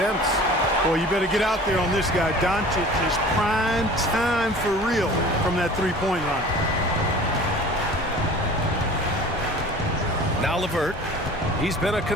Boy, you better get out there on this guy. Doncic is prime time for real from that three-point line. Now LeVert. He's been a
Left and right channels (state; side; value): normal; both; correlation 0.43